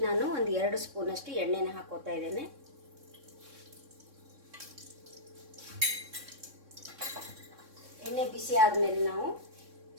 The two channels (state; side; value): late; left; 3.6 ms